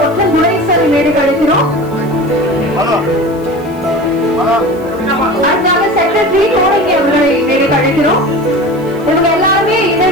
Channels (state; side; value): noise; right; hiss, 26 dB below the sound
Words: ஒற்றன் குணேசன் மேடைக்கு அழைக்கிறோம். அடுத்ததாக செக்ரட்டரி கோடங்கி அவர்களை மேடைக்கு அழைக்கிறோம். இவங்க எல்லாருமே